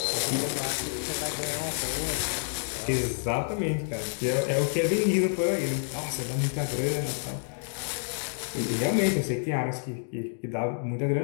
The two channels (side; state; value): right; silent; digital silence